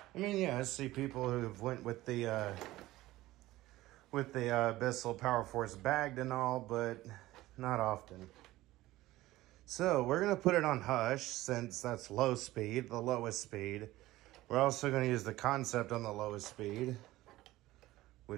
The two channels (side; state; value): left; quieter; 17.0 dB